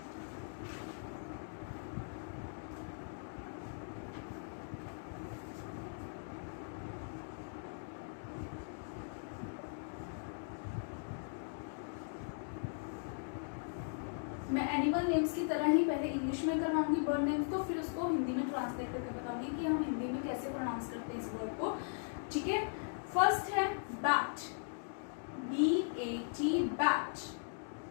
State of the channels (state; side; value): silent; right; digital silence